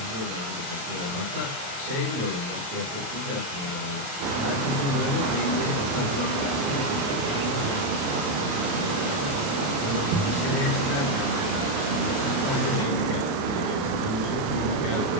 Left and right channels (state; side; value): late; left; 28 ms